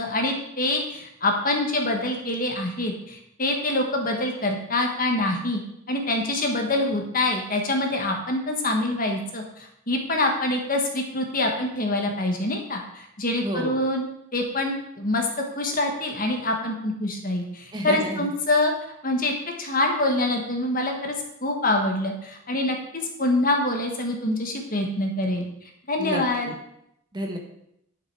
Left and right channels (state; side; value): normal; both; correlation 0.03